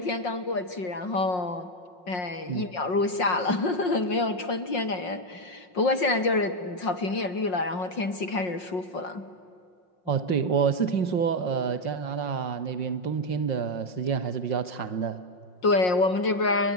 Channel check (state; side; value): late; right; 5.6 ms